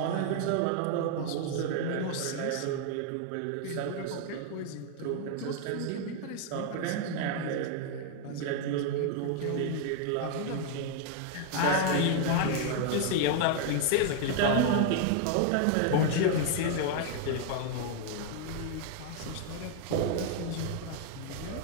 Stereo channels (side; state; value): both; different; correlation 0.00